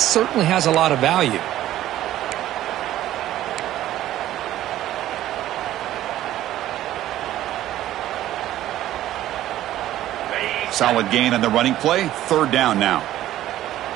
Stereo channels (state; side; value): quieter; left; 13.5 dB